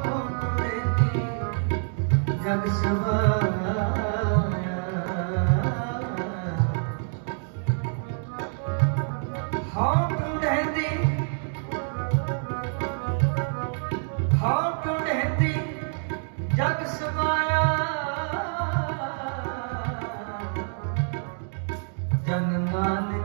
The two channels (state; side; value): silent; left; 55 dB below the other